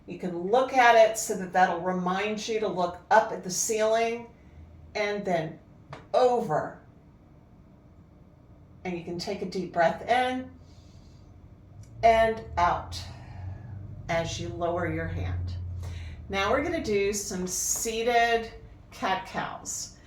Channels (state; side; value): identical; both; correlation 1.00